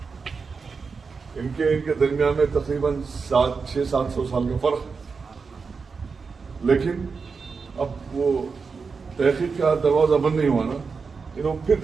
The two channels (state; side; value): quieter; left; 5.0 dB